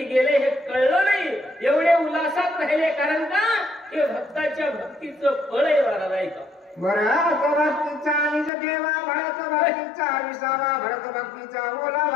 गेले हे कळलं नाही, एवढे उल्हासात राहिले. कारण का? हे भक्ताच्या भक्तीचं फळ आहे महाराज. ऐका. भरत भक्तीचा निज ठेवा भरत भक्तीचा विसावा भरत भक्तीचा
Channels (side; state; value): right; drops out; at 8.5 s